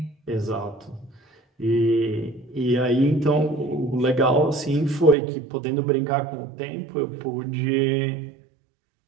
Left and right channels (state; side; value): drops out; left; at 5.2 s